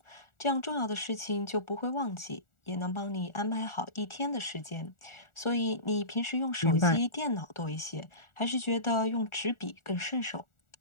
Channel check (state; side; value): late; right; 1.4 ms